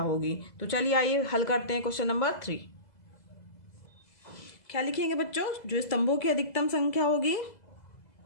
होगी। तो चलिए आइए हल करते हैं क्वेश्चन नंबर 3। क्या लिखेंगे बच्चों, जो स्तंभों की अधिकतम संख्या होगी,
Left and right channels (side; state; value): right; late; 2.0 ms